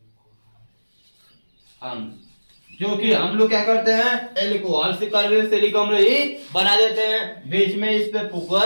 हम जो कि हम लोग क्या करते हैं, एल्कोहल से कार्बोक्सिलिक अम्ल ही बना देते हैं। बीच में इस पे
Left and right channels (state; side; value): inverted; both; correlation -1.00